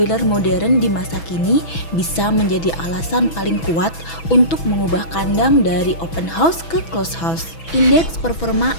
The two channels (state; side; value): late; right; 6.1 ms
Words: modern di masa kini bisa menjadi alasan paling kuat untuk mengubah kandang dari open house ke closed house. Indeks performa